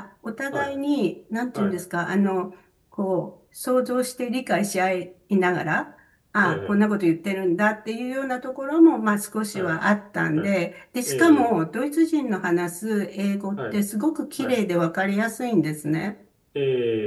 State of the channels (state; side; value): identical; both; correlation 1.00